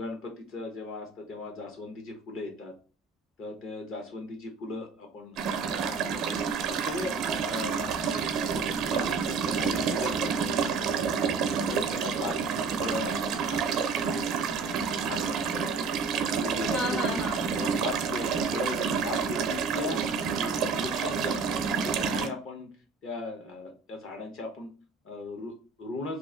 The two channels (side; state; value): left; quieter; 4.5 dB